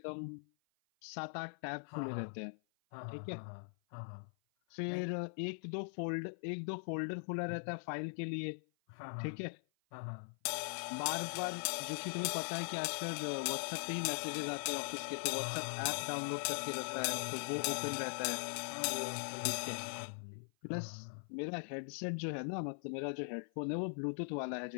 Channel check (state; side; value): silent; right; 50 dB below the other